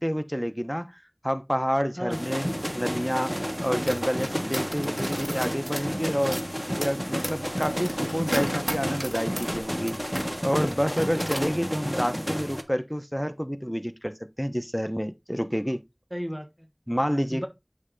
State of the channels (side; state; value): both; identical; correlation 1.00